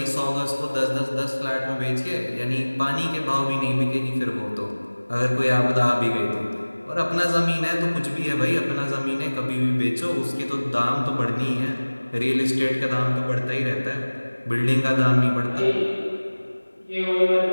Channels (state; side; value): inverted; both; correlation -1.00